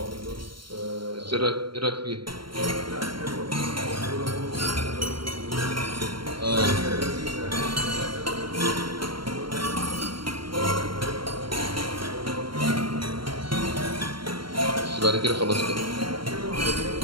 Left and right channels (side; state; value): left; late; 0.73 ms